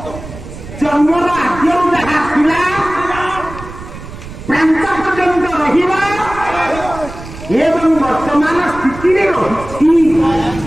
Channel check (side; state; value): right; noise; rumble, 13 dB below the sound